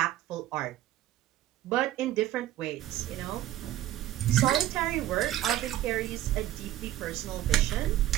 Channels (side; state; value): left; quieter; 13.7 dB